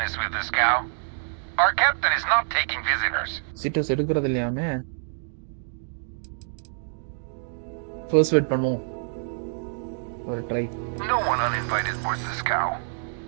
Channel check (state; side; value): silent; left; digital silence